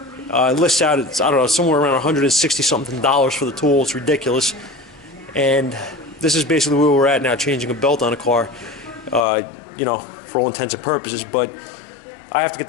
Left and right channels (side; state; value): right; drops out; at 9.2 s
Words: It lists out, it's, I don't know, somewhere around $160 something for the tool. It's ridiculous. And this is basically where we're at now, changing a belt on a car, you know, for all intents and purposes. But I have to get